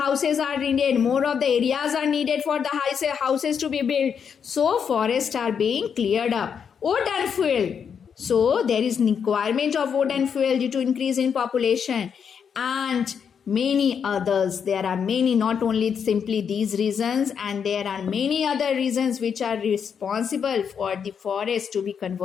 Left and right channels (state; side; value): quieter; right; 7.1 dB